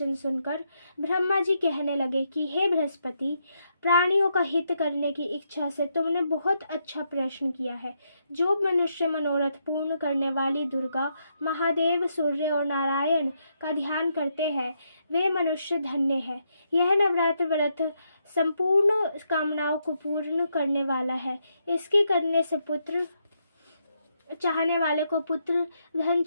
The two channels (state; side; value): inverted; both; correlation -0.79